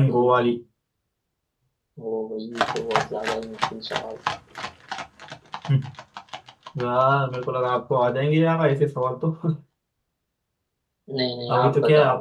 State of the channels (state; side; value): identical; both; correlation 1.00